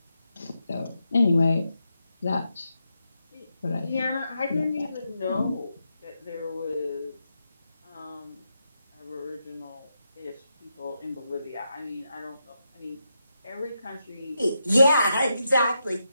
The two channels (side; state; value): both; inverted; correlation -0.85